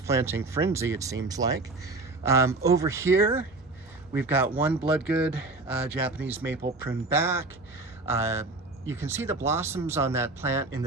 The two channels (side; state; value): left; quieter; 3.2 dB